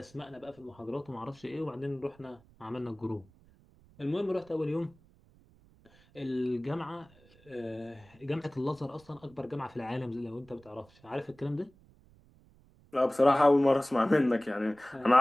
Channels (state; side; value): noise; right; rumble, 28 dB below the sound